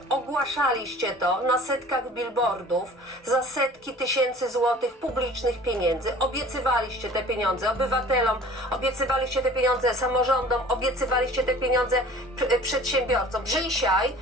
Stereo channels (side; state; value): both; normal; correlation 0.46